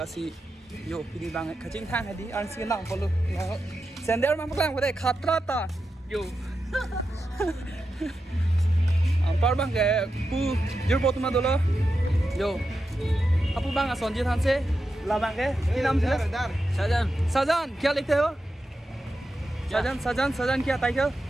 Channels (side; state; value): both; normal; correlation 0.89